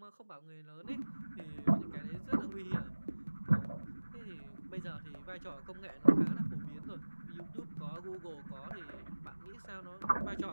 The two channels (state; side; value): inverted; both; correlation -1.00